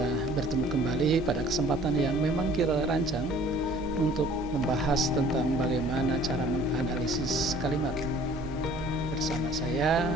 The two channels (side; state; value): right; noise; hum, 14 dB below the sound